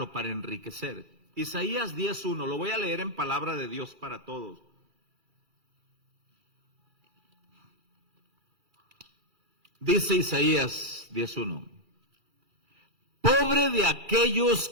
para enriquecer. Isaías 10:1, lo voy a leer en palabra de Dios para todos. Dice Isaías 10:1. Pobre de aquellos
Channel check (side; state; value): left; late; 2.3 ms